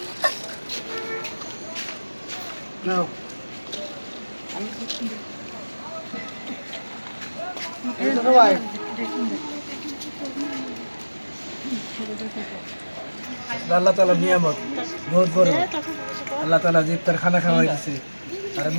নাও এই তো ভাই আল্লাহ তাআলা নিয়ামত বহুত বড় আল্লাহ তাআলা যে ইফতার খানা খাওয়াইছে আর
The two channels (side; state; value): both; inverted; correlation -1.00